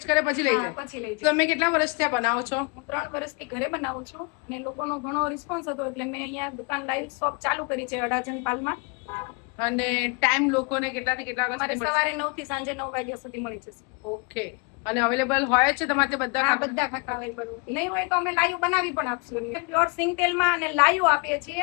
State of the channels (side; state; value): right; quieter; 32.6 dB